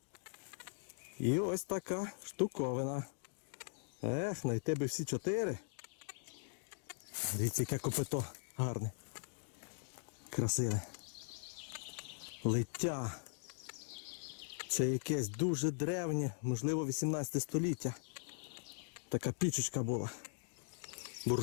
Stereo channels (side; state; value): right; silent; digital silence